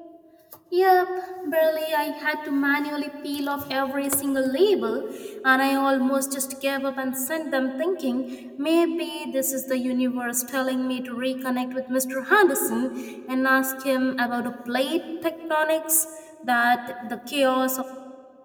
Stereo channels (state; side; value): identical; both; correlation 1.00